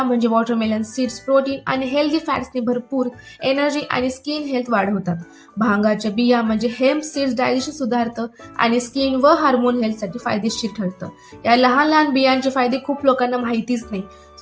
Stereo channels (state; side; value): identical; both; correlation 1.00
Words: म्हणजे वॉटरमेलन सीड्स प्रोटीन आणि हेल्दी फॅट्सने भरपूर, एनर्जी आणि स्किन हेल्थ वाढवतात. भांगाच्या बिया म्हणजे हेम्प सीड्स डायजेशन सुधारतं आणि स्किन व हार्मोन हेल्थसाठी फायदेशीर ठरतं. या लहान लहान बियांचे फायदे खूप लोकांना माहितीच नाही.